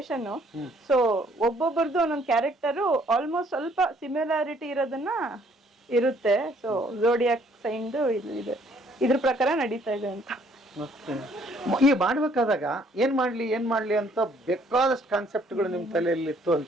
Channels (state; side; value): normal; both; correlation 0.63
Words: ಸೊ ಒಬ್ಬೊಬ್ರದ್ದು ಒಂದೊಂದು ಕ್ಯಾರೆಕ್ಟರ್ ಆಲ್ಮೋಸ್ಟ್ ಸ್ವಲ್ಪ ಸಿಮಿಲಾರಿಟಿ ಇರೋದನ್ನ ಇರುತ್ತೆ. ಸೊ ಝೋಡಿಯಾಕ್ ಸೈನ್ಡ್ ಇದೆ, ಇದ್ರ ಪ್ರಕಾರ ನಡೀತಾ ಇದೆ ಅಂತ. ಈ ಮಾಡ್ಬೇಕಾದಾಗ ಏನ್ ಮಾಡ್ಲಿ ಅಂತ ಬೇಕಾದಷ್ಟು ಕಾನ್ಸೆಪ್ಟ್ಗಳು ನಿಮ್ ತಲೆಯಲ್ಲಿ ಇತ್ತು